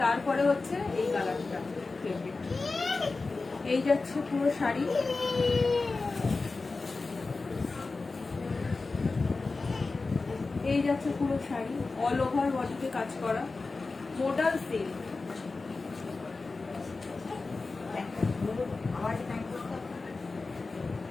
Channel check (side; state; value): right; quieter; 3.8 dB